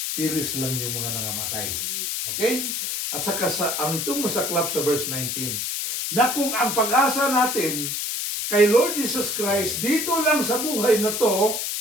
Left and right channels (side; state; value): left; noise; hiss, 2 dB below the sound